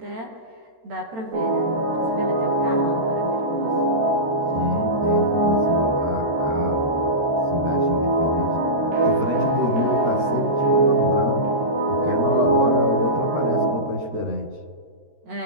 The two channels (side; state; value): left; late; 13 ms